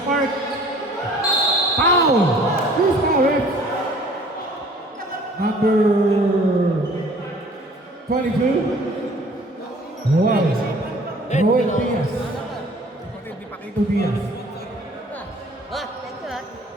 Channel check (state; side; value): normal; both; correlation 0.52